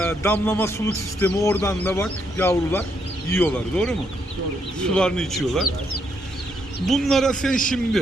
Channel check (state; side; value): normal; both; correlation 0.76